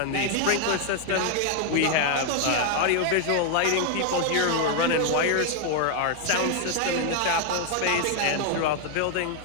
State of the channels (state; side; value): different; both; correlation 0.00